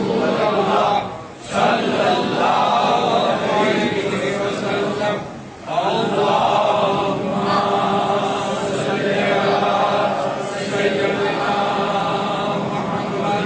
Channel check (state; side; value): identical; both; correlation 1.00